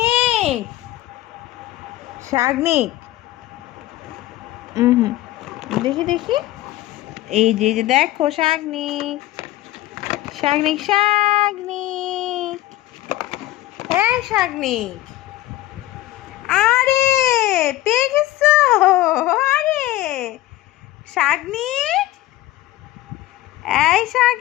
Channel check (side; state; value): right; quieter; 16.2 dB